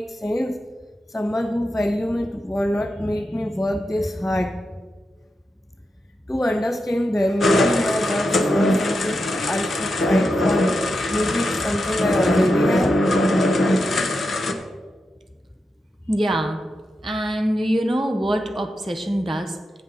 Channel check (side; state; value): both; normal; correlation 0.88